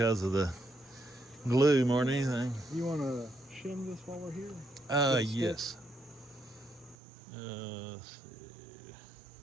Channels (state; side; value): drops out; left; at 7.0 s